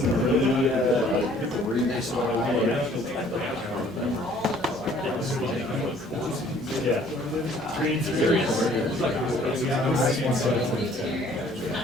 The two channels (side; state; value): both; normal; correlation 0.57